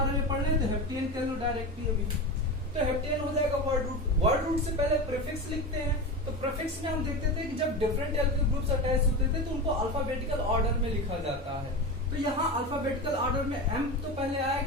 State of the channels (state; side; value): normal; both; correlation 0.24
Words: में पढ़ रहे हैं तो हेप्टेन कह लो डायरेक्टली अभी, तो हेप्टेन हो जाएगा वर्ड रूट। वर्ड रूट से पहले प्रीफिक्स लिखते हैं, तो प्रीफिक्स में हम देखते थे कि जब डिफरेंट एल्किल ग्रुप्स अटैच होते थे तो उनको अल्फाबेटिकल ऑर्डर में लिखा जाता है। तो यहाँ अल्फाबेटिकल ऑर्डर में एम तो पहले